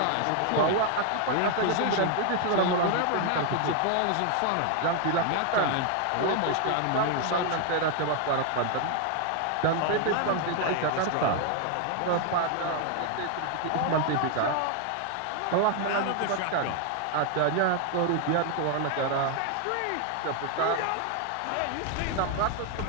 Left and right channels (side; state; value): both; different; correlation 0.00